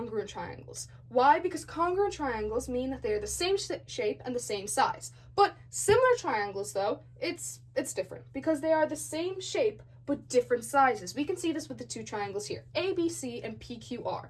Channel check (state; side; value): identical; both; correlation 1.00